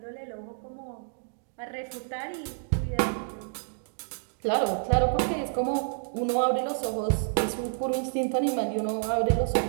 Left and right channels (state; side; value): silent; left; digital silence